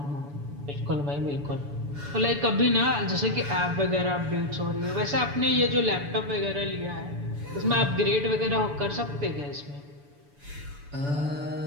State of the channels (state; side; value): late; left; 7.0 ms